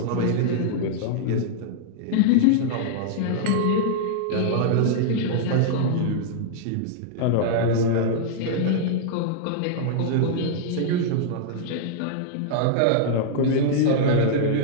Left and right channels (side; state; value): both; different; correlation -0.01